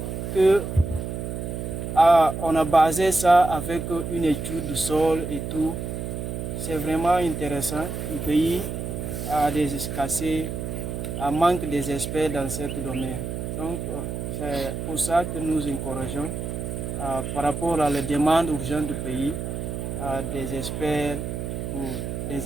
que on a basé ça avec une étude du sol et tout. C'est vraiment intéressant. Le pays a des escassés, manque des experts dans ce domaine. Donc c'est pour ça que nous encourageons par rapport à la demande urgente du pays, des experts,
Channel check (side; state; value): right; noise; hum, 5 dB below the sound